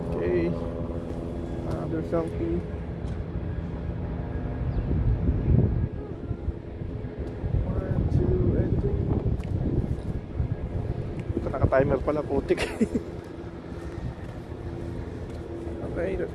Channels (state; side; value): identical; both; correlation 1.00